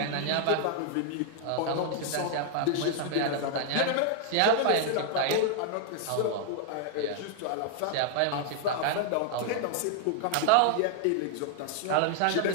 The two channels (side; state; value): both; different; correlation 0.00